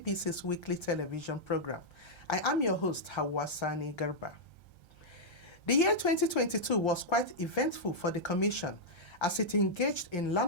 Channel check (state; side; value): late; right; 1.3 ms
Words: weekly television program. I am your host, Hawa Sani Garba. The year 2022 was quite eventful for the Commission as it engaged in